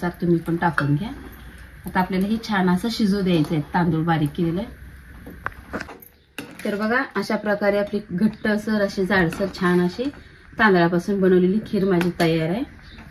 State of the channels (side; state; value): both; identical; correlation 1.00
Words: तुम्ही पण टाकून घ्या। आता आपल्याला हे छान असं शिजू द्यायचं आहे, तांदूळ बारीक केलेलं आहे। तर बघा, अशा प्रकारे आपली घट्टसर अशी जाडसर छान अशी तांदळापासून बनवलेली खीर माझी तयार आहे।